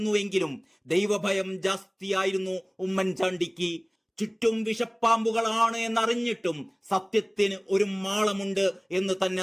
ദൈവഭയം ജാസ്തിയായിരുന്നു ഉമ്മൻചാണ്ടിക്ക്. ചുറ്റും വിഷപ്പാമ്പുകളാണ് എന്നറിഞ്ഞിട്ടും സത്യത്തിന് ഒരു മാളമുണ്ട് എന്ന് തന്നെ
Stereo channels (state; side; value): identical; both; correlation 1.00